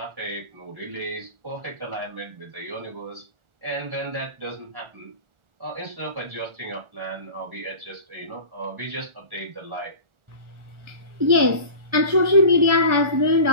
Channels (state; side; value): late; left; 1.4 ms